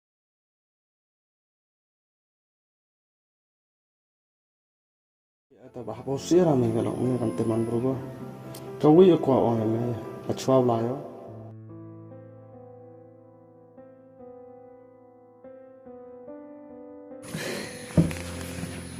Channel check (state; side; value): identical; both; correlation 1.00